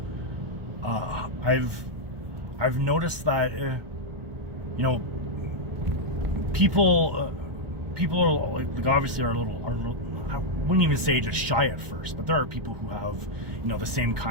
I've noticed that you know people are like obviously are a little I wouldn't even say just shy at first, but there are people who have the same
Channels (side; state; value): left; late; 1.4 ms